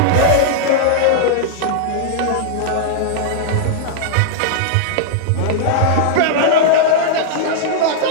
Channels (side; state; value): both; different; correlation -0.02